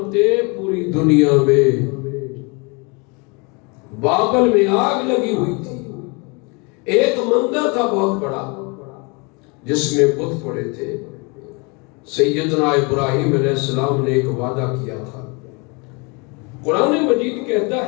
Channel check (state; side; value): quieter; right; 30.4 dB